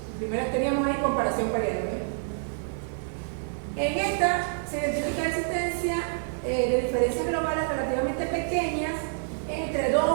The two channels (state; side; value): silent; left; 60 dB below the other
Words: Primero teníamos ahí comparación pareada. En esta se identifica la existencia de diferencias globales relativamente pequeñas entre